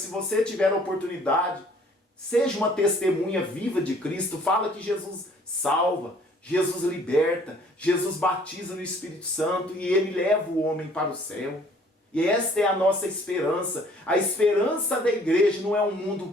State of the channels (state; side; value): normal; both; correlation 0.57